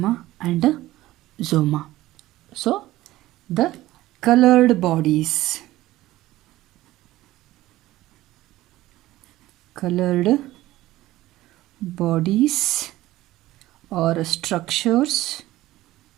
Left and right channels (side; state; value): left; quieter; 16.4 dB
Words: and soma. So the colored bodies. Colored bodies or structures